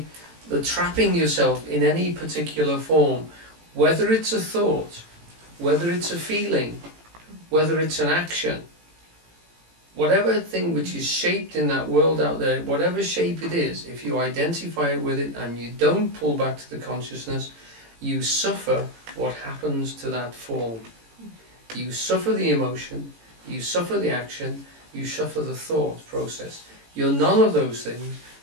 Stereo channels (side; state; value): left; late; 18 ms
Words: the trapping yourself in any particular form, whether it's a thought, whether it's a feeling, whether it's an action, whatever thing which is shaped in that world out there, whatever shape it is, if you identify with it and you don't pull back to the consciousness, you suffer what happens to that form. You suffer the emotion, you suffer the action, you suffer the thought process. You're none of those things,